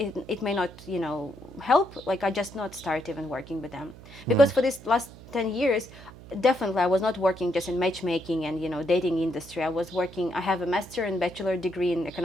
may not, help. Like I just not start even working with them. Because for this last 10 years, definitely I was not working just in matchmaking and dating industry. I have a master and bachelor degree in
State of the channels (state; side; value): noise; right; hum, 18 dB below the sound